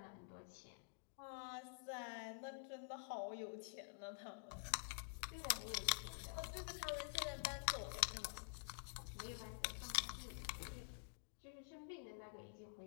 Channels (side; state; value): right; silent; digital silence